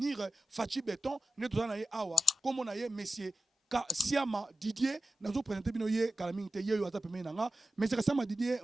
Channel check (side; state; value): both; normal; correlation 0.94